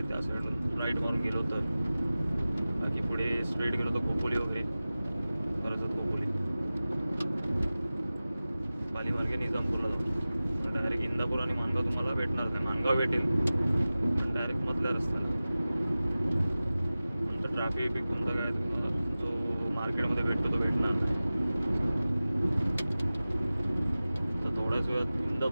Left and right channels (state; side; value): inverted; both; correlation -0.97